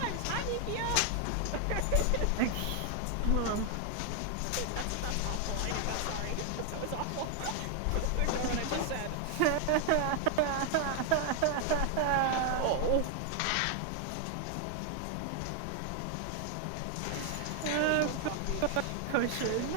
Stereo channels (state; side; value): different; both; correlation 0.00